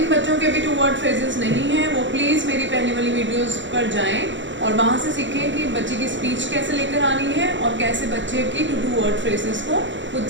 बच्चों के अभी 2 वर्ड फ्रेजेस नहीं हैं, वो प्लीज़ मेरी पहले वाली वीडियोस पर जाएं और वहाँ से सीखें कि बच्चे की स्पीच कैसे लेकर आनी है और कैसे बच्चे की 2 वर्ड फ्रेजेस को खुद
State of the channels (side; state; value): left; late; 0.54 ms